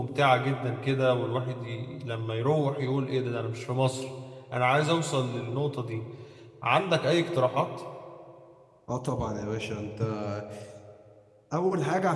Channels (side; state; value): both; identical; correlation 1.00